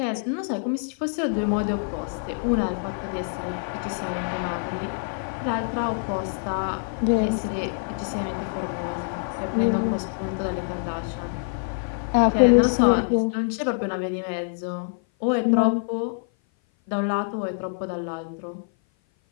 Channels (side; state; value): right; silent; 56 dB below the other